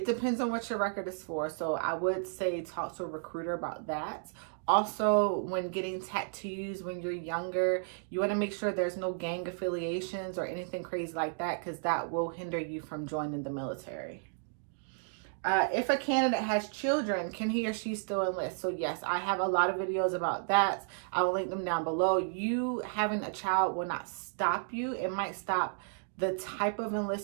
depends on what your record is for. So I would say talk to a recruiter about that. Also, when getting tattoos when you're younger, you want to make sure there's no gang affiliations or anything crazy like that, because that will hinder you from joining the military. If a candidate has children, can he or she still enlist? So yes, I have a lot of videos about that. I will link them down below. You having a child will not stop you. It might stop the type of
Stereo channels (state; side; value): silent; left; digital silence